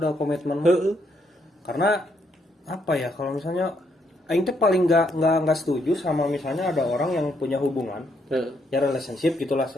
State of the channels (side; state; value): both; normal; correlation 0.74